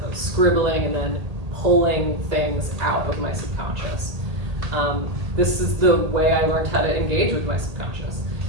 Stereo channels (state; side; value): late; left; 1.8 ms